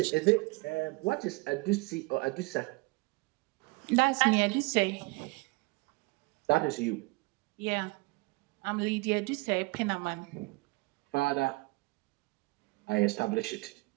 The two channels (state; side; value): quieter; left; 26.0 dB